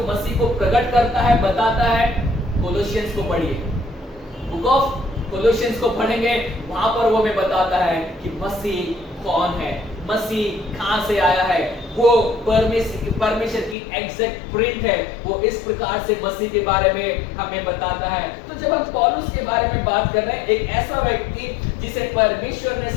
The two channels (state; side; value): drops out; right; at 13.8 s